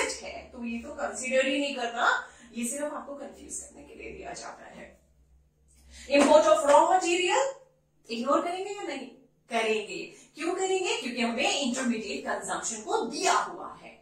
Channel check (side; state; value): both; identical; correlation 1.00